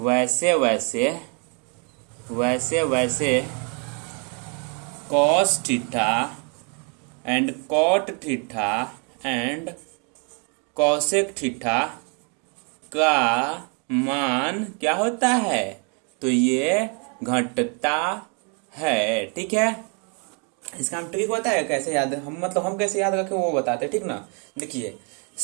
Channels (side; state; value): left; quieter; 37.4 dB